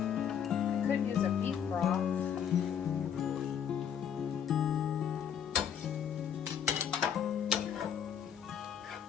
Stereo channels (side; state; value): right; quieter; 8.4 dB